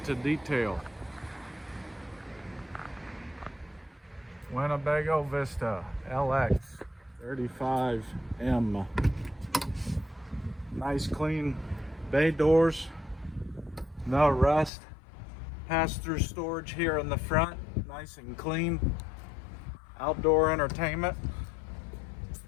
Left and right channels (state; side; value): drops out; right; at 14.7 s